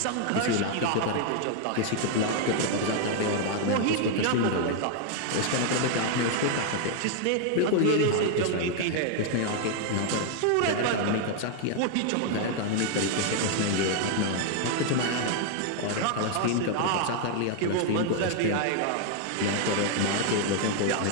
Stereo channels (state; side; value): different; both; correlation 0.00